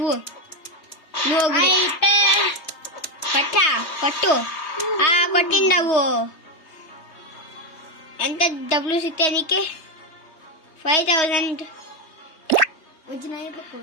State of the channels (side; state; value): right; late; 3.2 ms